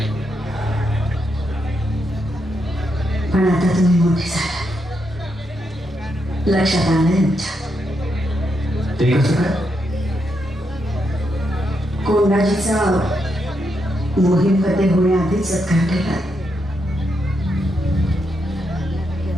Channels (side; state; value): both; normal; correlation 0.81